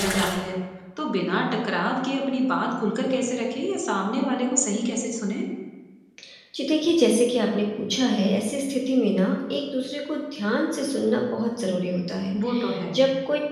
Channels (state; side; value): identical; both; correlation 1.00